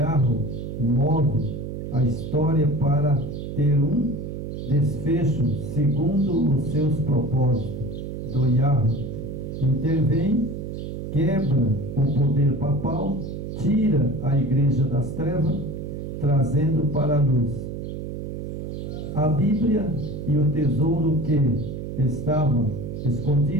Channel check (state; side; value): noise; right; hum, 7 dB below the sound